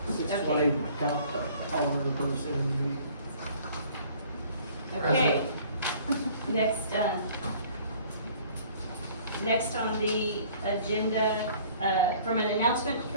620, count all of the person. Okay. Next on the agenda, from an announcement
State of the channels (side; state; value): both; inverted; correlation -0.53